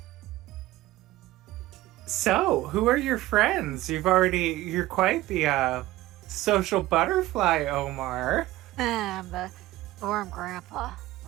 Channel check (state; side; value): quieter; left; 16.8 dB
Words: So, who are your friends? You're quite the social butterfly, Omar. I'm the dorm grandpa,